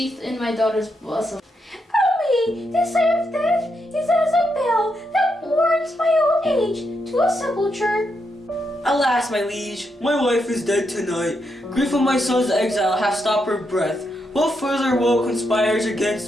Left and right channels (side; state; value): both; normal; correlation 0.81